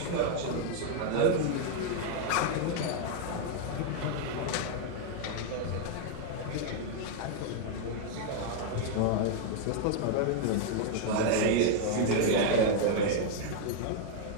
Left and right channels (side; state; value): both; different; correlation 0.00